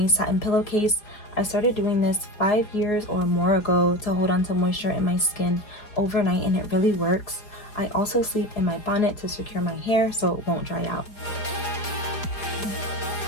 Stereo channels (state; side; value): late; right; 4.8 ms